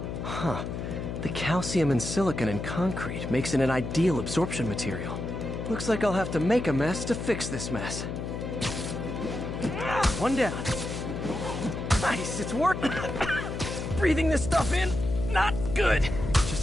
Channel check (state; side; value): noise; left; hum, 5 dB below the sound